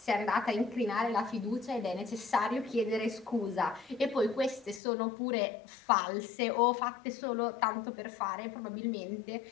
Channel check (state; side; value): drops out; right; at 4.8 s